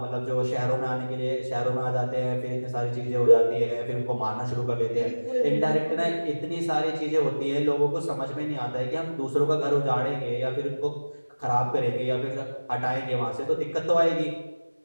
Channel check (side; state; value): both; inverted; correlation -1.00